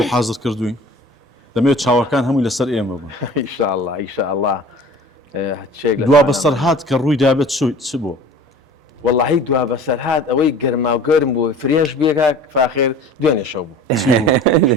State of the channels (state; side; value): normal; both; correlation 0.43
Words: حازر کردوین دەمەوێت چاوەکان هەمووی لەسەر ئێمە بوون ئیشاءالله ئیشاءالله دوا بەسەر هات کە ڕووی دابێت چ بۆ واللهی دوا بەسەر هات ئەوەی گەرما و گەرم بوو فرێش بێکا فاخر دوێنێ شەو بوو